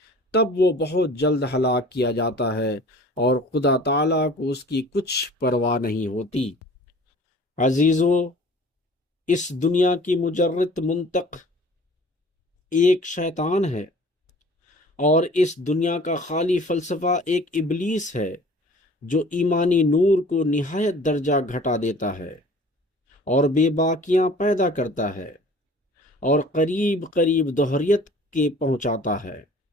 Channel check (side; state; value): both; normal; correlation 0.47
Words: تب وہ بہت جلد ہلاک کیا جاتا ہے اور خدا تعالیٰ کو اس کی کچھ پرواہ نہیں ہوتی۔ عزیزو، اس دنیا کی مجرد منطق ایک شیطان ہے، اور اس دنیا کا خالی فلسفہ ایک ابلیس ہے جو ایمانی نور کو نہایت درجہ گھٹا دیتا ہے اور بے باکیاں پیدا کرتا ہے اور قریب قریب دہریت کے پہنچاتا ہے۔